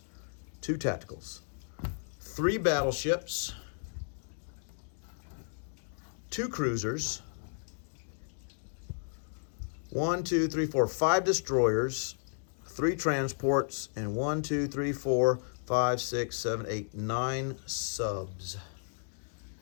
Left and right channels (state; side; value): silent; right; digital silence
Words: 2 tacticals. 3 battleships, 2 cruisers, 1, 2, 3, 4, 5 destroyers, 3 transports, and 1, 2, 3, 4, 5, 6, 7, 8, 9 subs.